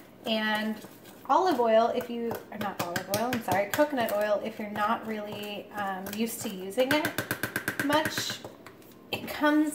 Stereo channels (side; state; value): both; identical; correlation 1.00